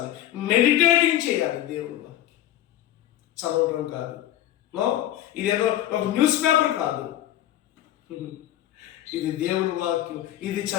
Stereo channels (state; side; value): quieter; right; 13.1 dB